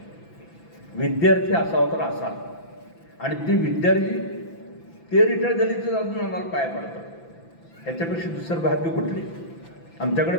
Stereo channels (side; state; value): right; late; 6.0 ms